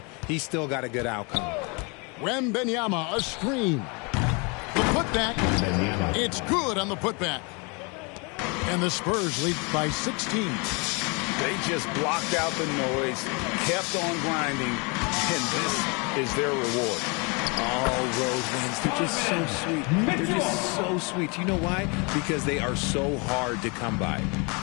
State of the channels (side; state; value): right; quieter; 31.3 dB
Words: He still got a good outcome. Wembanyama, a screen. The putback, it's good on the putback. And the Spurs lead by 16. They just blocked out the noise, kept on grinding, and this is their reward. All road wins. They're just so sweet. They're just so sweet. You know why? Because they are so hard to come by.